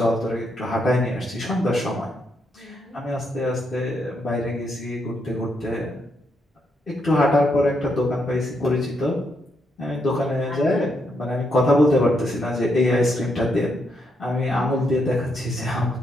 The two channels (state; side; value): normal; both; correlation 0.79